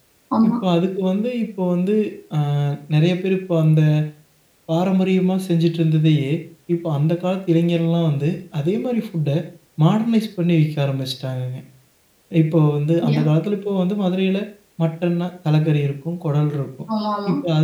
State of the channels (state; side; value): identical; both; correlation 1.00